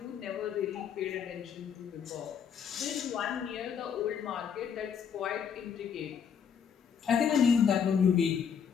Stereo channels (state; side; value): quieter; right; 7.3 dB